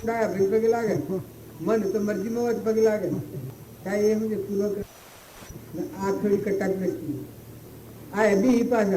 ડાયાબેન પગે લાગે મન તો મરજીમાં હોય પગે લાગે કાંઈ એમ છે પૂર્વ કર્મ આ થોડી કટાક નથી આ બી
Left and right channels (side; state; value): both; identical; correlation 1.00